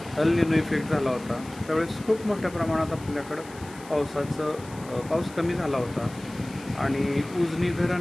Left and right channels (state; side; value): noise; left; hiss, 20 dB below the sound